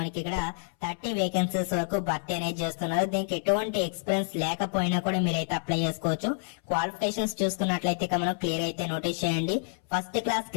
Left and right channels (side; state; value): right; silent; 59 dB below the other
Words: మనకి ఇక్కడ 30 వేకెన్సీస్ వరకు భర్తీ అనేది చేస్తున్నారు. దీనికి ఎటువంటి ఎక్స్పీరియన్స్ లేకపోయినా కూడా మీరైతే అప్లై చేసుకోవచ్చు. క్వాలిఫికేషన్స్ చూసుకున్నట్లయితే మనం క్లియర్ అయితే నోటీస్ చేయండి. First class